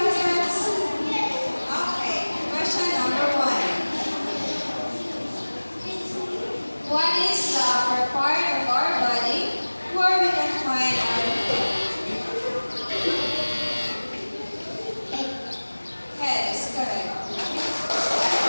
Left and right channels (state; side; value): inverted; both; correlation -1.00